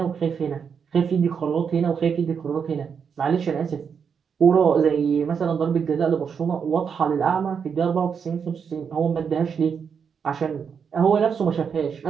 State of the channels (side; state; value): left; quieter; 6.7 dB